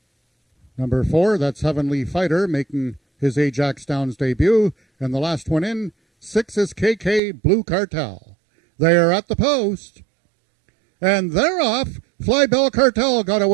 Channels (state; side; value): drops out; left; at 7.2 s